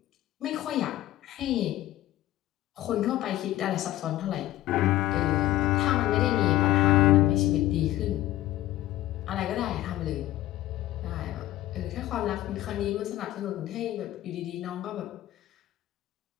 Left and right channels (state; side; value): quieter; right; 14.9 dB